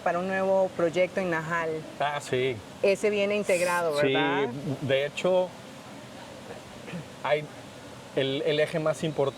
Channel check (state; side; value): identical; both; correlation 1.00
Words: un nuevo proyecto en Najal. Ah, sí. Ese viene integrado, ¿verdad? Sí, de hecho, hay el eje más